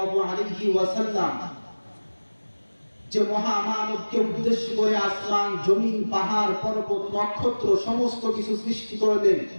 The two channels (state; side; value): inverted; both; correlation -1.00